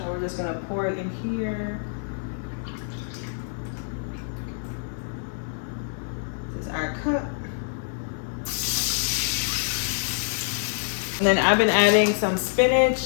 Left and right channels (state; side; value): silent; right; digital silence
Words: we're just gonna pour it in here. This is our cup. And then I've been adding some spinach